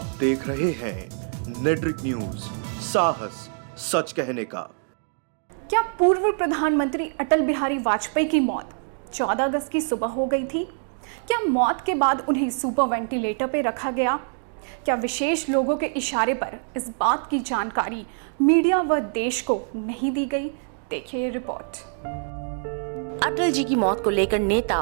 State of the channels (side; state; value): left; silent; digital silence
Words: देख रहे हैं नेट्रिक न्यूज, साहस सच कहने का। क्या पूर्व प्रधानमंत्री अटल बिहारी वाजपेयी की मौत 14 अगस्त की सुबह हो गई थी? क्या मौत के बाद उन्हें सुपर वेंटिलेटर पर रखा गया? क्या विशेष लोगों के इशारे पर इस बात की जानकारी मीडिया व देश को नहीं दी गई? देखिए ये रिपोर्ट। अटल जी की मौत को लेकर नेता